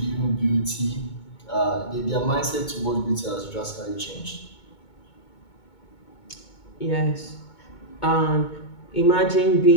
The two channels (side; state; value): right; late; 2.2 ms